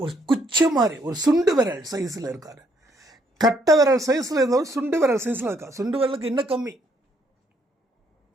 ஒரு குச்சி மாதிரி, ஒரு சுண்டு விரல் சைஸில் இருக்கார். கட்டை விரல் சைஸில் இருந்தவர் சுண்டு விரல் சைஸில் இருக்கார். சுண்டு விரலுக்கு இன்னும் கம்மி.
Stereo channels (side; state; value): both; normal; correlation 0.70